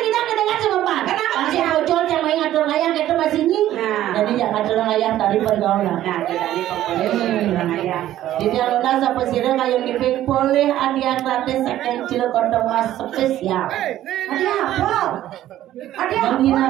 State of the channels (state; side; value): quieter; left; 13.2 dB